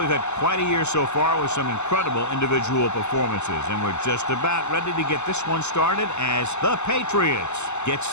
had quite a year so far with some incredible individual performances, and we're just about ready to get this one started as the Patriots get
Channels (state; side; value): late; right; 0.82 ms